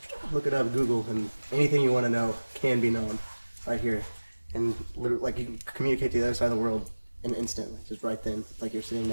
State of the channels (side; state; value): both; inverted; correlation -1.00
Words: look it up, Google, and anything you want to know can be known right here. And literally, like, you can communicate to the other side of the world in an instant, like, just right then, like you're sitting